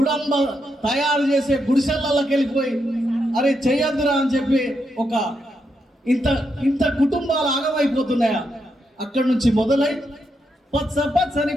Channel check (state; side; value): normal; both; correlation 0.82